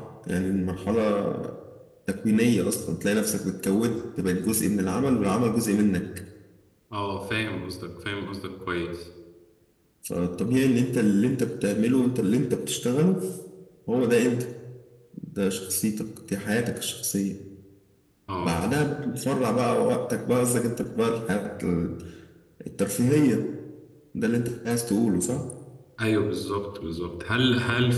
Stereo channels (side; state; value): both; identical; correlation 1.00